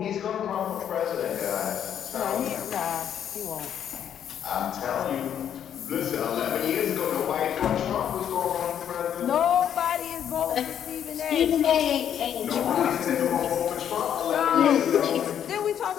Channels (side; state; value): right; quieter; 9.4 dB